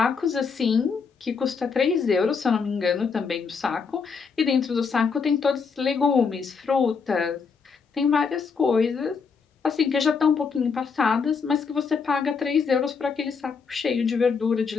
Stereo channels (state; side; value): quieter; right; 5.5 dB